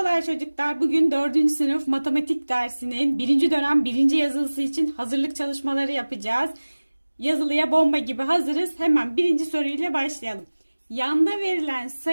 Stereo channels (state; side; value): inverted; both; correlation -1.00